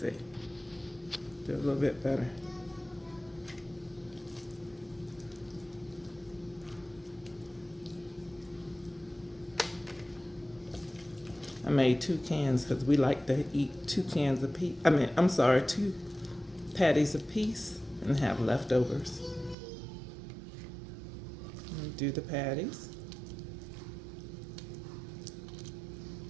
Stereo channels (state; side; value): drops out; left; at 19.6 s